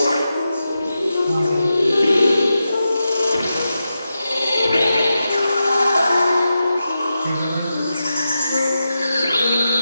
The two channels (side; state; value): both; inverted; correlation -0.89